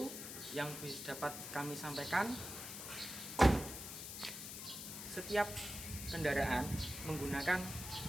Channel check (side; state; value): left; noise; hiss, 8 dB below the sound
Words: yang dapat kami sampaikan. Setiap kendaraan menggunakan